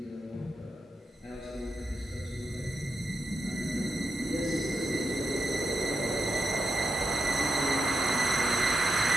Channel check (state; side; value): normal; both; correlation 0.85